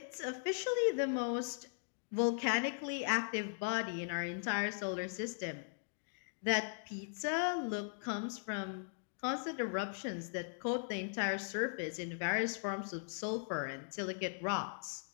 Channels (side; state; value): right; silent; digital silence